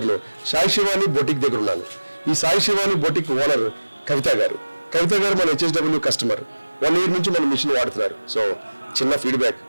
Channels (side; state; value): both; inverted; correlation -1.00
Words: సాయి శివాని బొటిక్ దగ్గర ఉన్నాను. ఈ సాయి శివాని బొటిక్ ఓనర్ కవిత గారు మన హెచ్ఎస్డబ్ల్యూ కస్టమర్. 1 year నుంచి మన మిషన్ వాడుతున్నారు. సో చిన్న ఫీడ్బ్యాక్